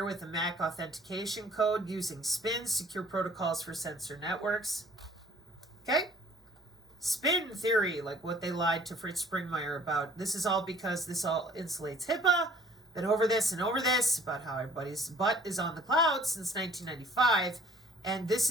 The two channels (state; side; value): normal; both; correlation 0.54